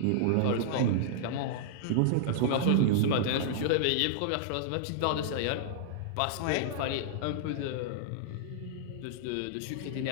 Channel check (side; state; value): both; different; correlation -0.02